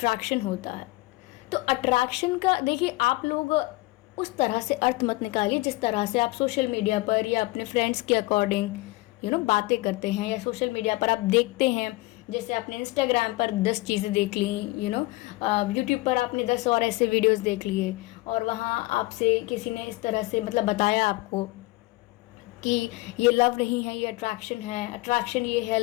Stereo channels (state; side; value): quieter; right; 21.3 dB